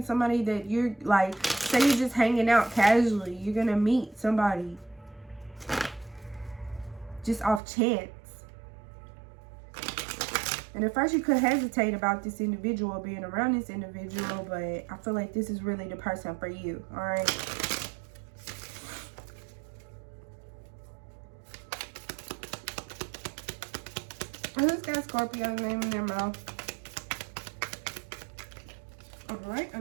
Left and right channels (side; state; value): left; drops out; at 7.6 s